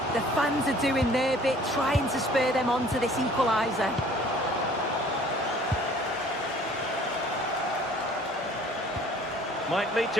The fans are doing their bit, trying to spur them on to this equaliser. Might lead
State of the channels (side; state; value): both; normal; correlation 0.53